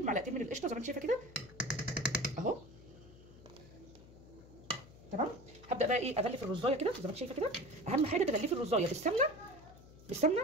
معلقتين من القشطه زي ما انت شايفه كده اهو تمام. هبدا بقى ايه اغلف الرزايه كده زي ما انت شايفه كده. اهم حاجه تغلفي الرزايه بالسمنه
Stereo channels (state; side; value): noise; left; hum, 20 dB below the sound